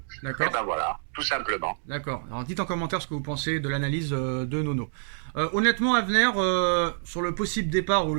D'accord. Et voilà, tout simplement. D'accord. Alors dites en commentaire ce que vous pensez de l'analyse de Nono. Honnêtement, Avner, sur le possible départ ou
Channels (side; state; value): left; silent; digital silence